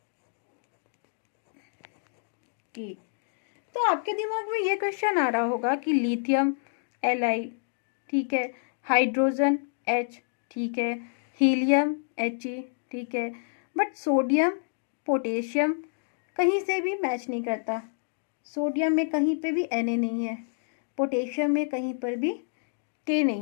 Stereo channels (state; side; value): silent; right; digital silence